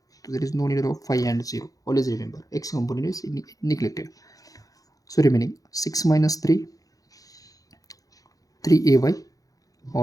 तो there is no need of 5 and 0. Always remember X component is neglected. So remaining 6 - 3 3ay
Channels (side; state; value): right; late; 0.17 ms